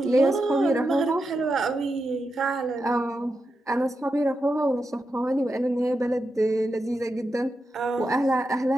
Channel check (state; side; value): normal; both; correlation 0.87